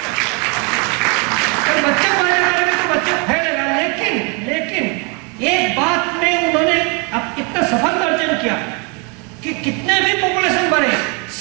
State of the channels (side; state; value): left; quieter; 33.1 dB